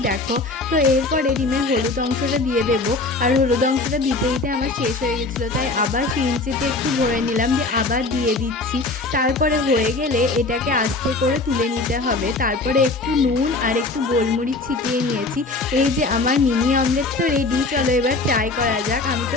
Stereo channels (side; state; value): right; quieter; 3.3 dB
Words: দেখো। তো এরপরে ডিমের হলুদ অংশটা দিয়ে দেবো। আর হলুদ অংশটা দিতে দিতে আমার শেষ হয়ে গেছিলো, তাই আবার সিরিঞ্জিতে একটু ভরে নিলাম, দিয়ে আবার দিয়ে দিচ্ছি। তারপরে হয়ে গেলে এটাকে আস্তে করে তুলে নিতে হবে। তারপরে একটু নুন আর একটু গোলমরিচ ছিটিয়ে নিয়েছি। এই যে আমার মিনি অমলেট তো রেডি। চলো এবার ট্রাই করা যাক। আমি